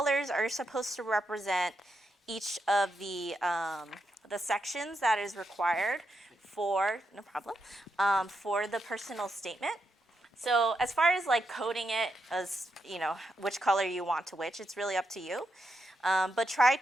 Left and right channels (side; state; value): both; normal; correlation 0.83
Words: are supposed to represent each of the sections that is required for, no problem, for the personal statement. So as far as like coding it as, which color you want to which, it's really up to you. But try